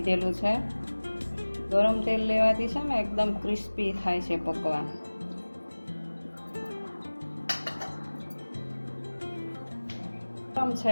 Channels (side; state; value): both; inverted; correlation -1.00